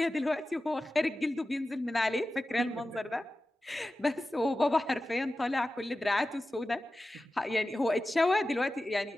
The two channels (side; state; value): both; normal; correlation 0.94